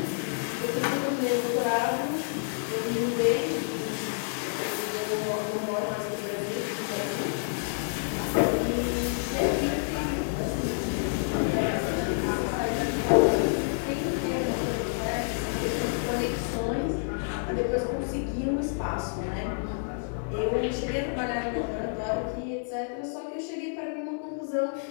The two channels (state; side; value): silent; right; 59 dB below the other